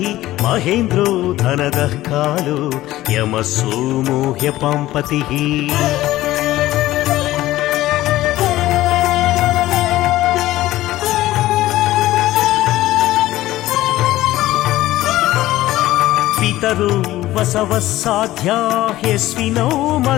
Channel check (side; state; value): right; quieter; 15.8 dB